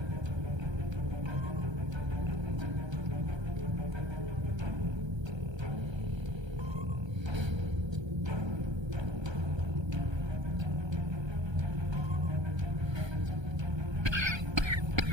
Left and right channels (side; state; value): left; late; 1.3 ms